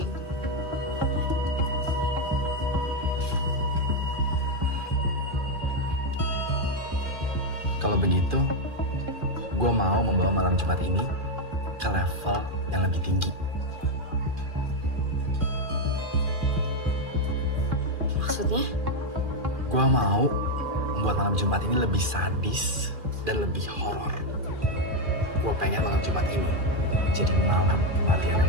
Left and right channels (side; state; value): left; late; 2.4 ms